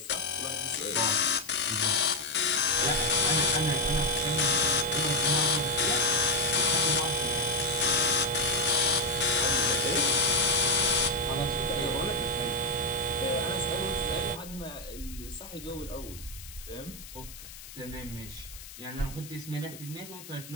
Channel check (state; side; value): noise; left; hiss, 16 dB below the sound